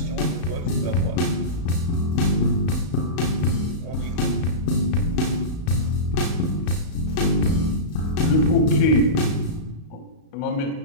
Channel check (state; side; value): late; right; 35 ms